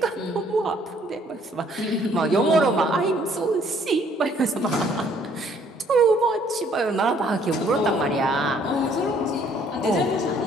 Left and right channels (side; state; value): both; normal; correlation 0.62